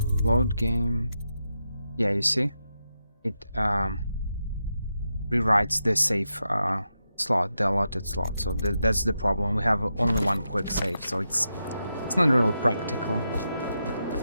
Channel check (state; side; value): inverted; both; correlation -0.86